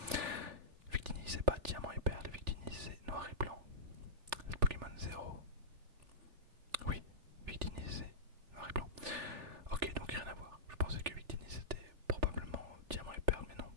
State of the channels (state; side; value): late; left; 3.4 ms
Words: Victini c'est pas Diamant et Perle, Victini c'est Noir et Blanc. C'est Pokémon 0. Oui, Victini c'est Noir et Blanc. Ok, donc rien à voir. Je pensais que Victini c'était probablement Diamant et Perle, mais non,